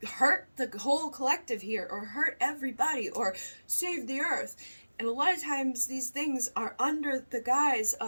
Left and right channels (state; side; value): inverted; both; correlation -1.00